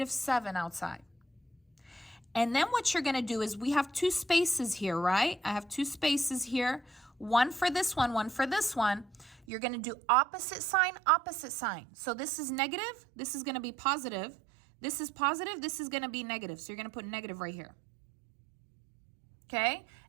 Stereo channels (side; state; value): left; drops out; at 9.5 s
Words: 7 outside. And then what you're going to do is we have 2 spaces here, right? I have 2 spaces here. One for this one for this one. You're going to do opposite sign, opposite sign. So this is negative. This is going to be positive. This is positive. This is going to be negative. So you're going to put negative right here. Okay?